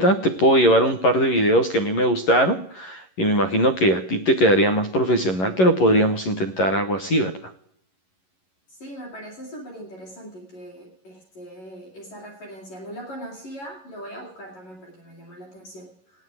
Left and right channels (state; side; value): late; right; 11 ms